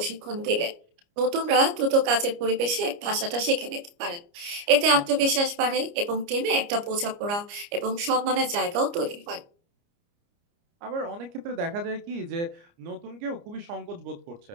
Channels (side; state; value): left; late; 29 ms